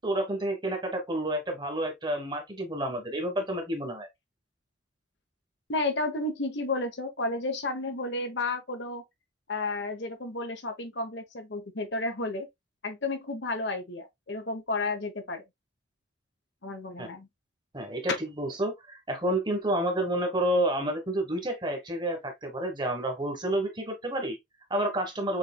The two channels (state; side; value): normal; both; correlation 0.20